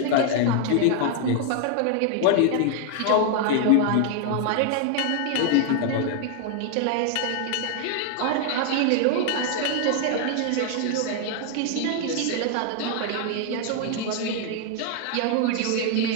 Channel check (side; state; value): both; different; correlation 0.00